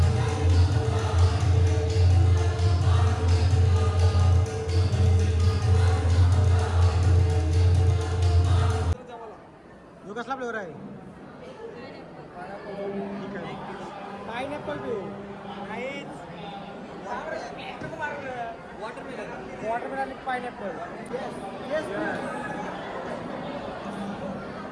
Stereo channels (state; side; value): identical; both; correlation 1.00